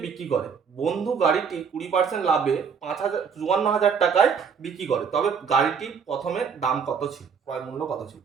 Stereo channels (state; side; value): quieter; left; 6.4 dB